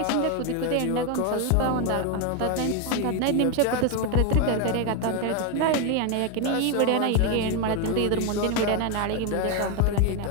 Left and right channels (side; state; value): both; different; correlation 0.01